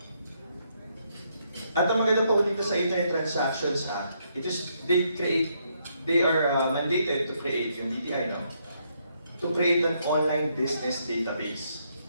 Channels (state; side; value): inverted; both; correlation -0.75